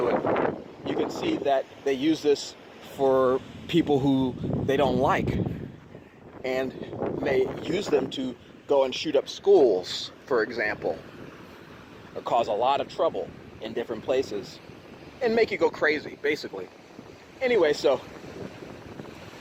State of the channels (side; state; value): both; identical; correlation 1.00